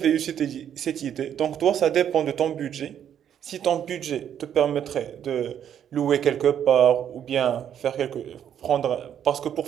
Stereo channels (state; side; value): quieter; left; 9.4 dB